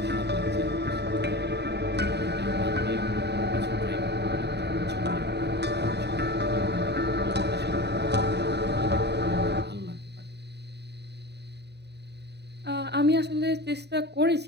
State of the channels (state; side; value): late; left; 0.49 ms